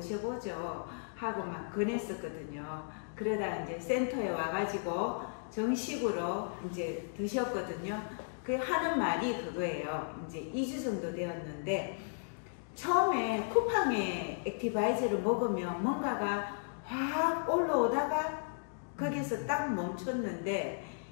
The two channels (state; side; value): silent; right; digital silence